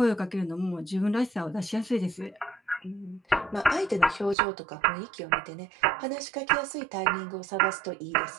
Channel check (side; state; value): left; drops out; at 4.4 s